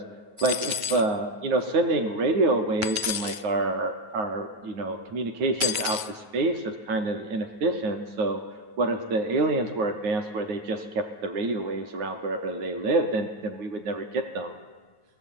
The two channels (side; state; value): left; late; 9.3 ms